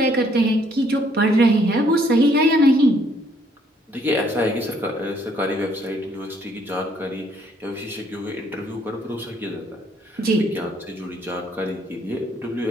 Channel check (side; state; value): both; normal; correlation 0.66